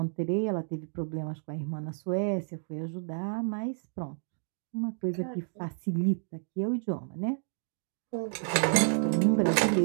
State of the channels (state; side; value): silent; left; 58 dB below the other